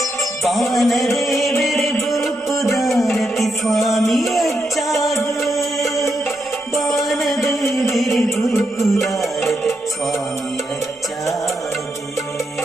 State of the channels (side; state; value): both; normal; correlation 0.83